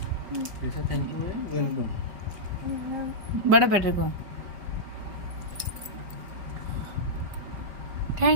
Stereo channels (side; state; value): left; late; 5.0 ms